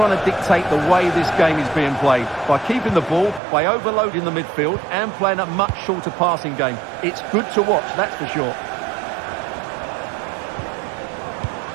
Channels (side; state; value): left; drops out; at 3.4 s